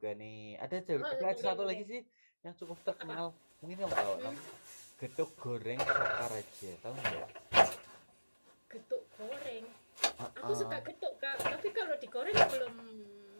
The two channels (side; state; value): both; inverted; correlation -1.00